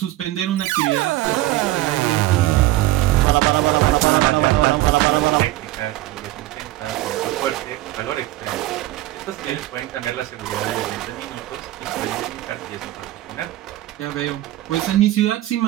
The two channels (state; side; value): quieter; left; 16.2 dB